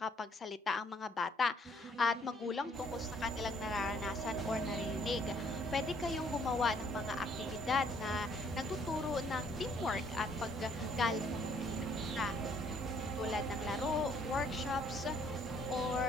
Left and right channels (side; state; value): both; normal; correlation 0.64